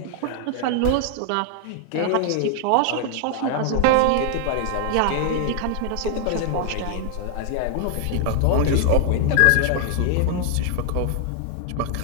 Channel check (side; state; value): both; different; correlation 0.00